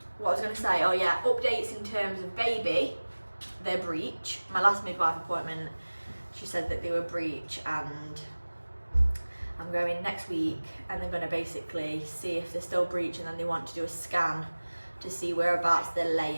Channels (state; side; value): inverted; both; correlation -1.00